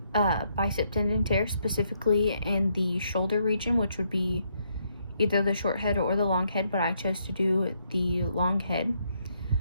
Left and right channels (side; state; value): both; inverted; correlation -0.75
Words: bicep tendon tear, specifically in the shoulder region, which would be either the short head or the long head, but I chose to do the long head.